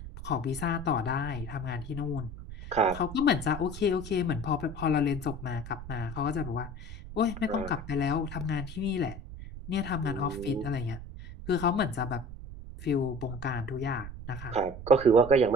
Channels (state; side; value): noise; right; rumble, 11 dB below the sound